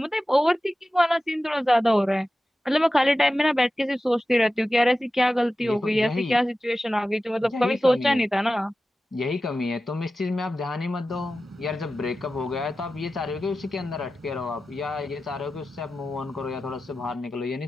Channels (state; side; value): normal; both; correlation 0.94